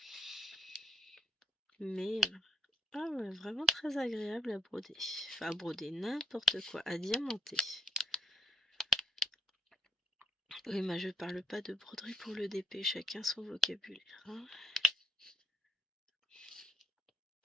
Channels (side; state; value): both; normal; correlation 0.76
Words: Mais ah ouais, vraiment très agréable à broder. Enfin à broder n'importe quoi, à diamanter. Oui, mais je parle pas de broderie pour le DP, chacun son vocabulaire. Hein.